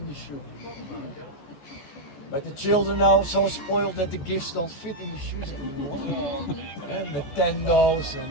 the shoe. But the children are now so spoiled that the gifts don't fit in the shoes anymore. And Nintendos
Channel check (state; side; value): late; right; 14 ms